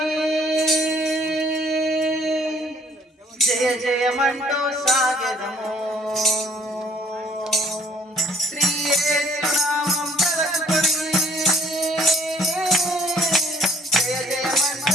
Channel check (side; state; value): both; normal; correlation 0.58